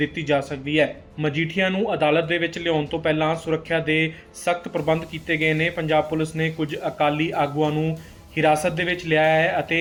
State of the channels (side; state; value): both; identical; correlation 1.00